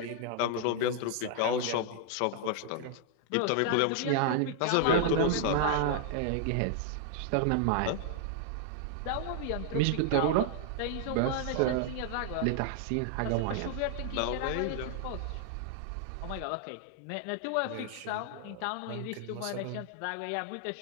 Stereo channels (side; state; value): both; different; correlation 0.00